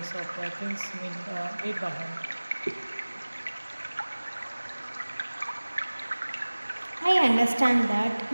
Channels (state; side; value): inverted; both; correlation -1.00